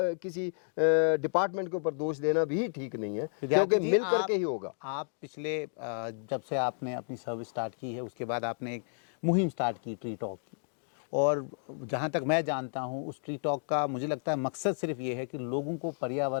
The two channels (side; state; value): right; silent; digital silence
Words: किसी डिपार्टमेंट के ऊपर दोष देना भी ठीक नहीं है, क्योंकि जी, मिल करके ही होगा। आप पिछले जब से आपने अपनी सर्विस स्टार्ट की है उसके बाद आपने एक मुहिम स्टार्ट की ट्री टॉक की, और जहाँ तक मैं जानता हूँ उस ट्री टॉक का मुझे लगता है मकसद सिर्फ ये है कि लोगों को